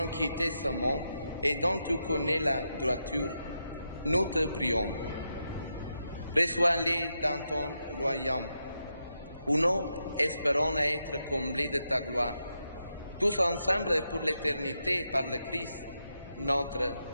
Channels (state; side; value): inverted; both; correlation -0.85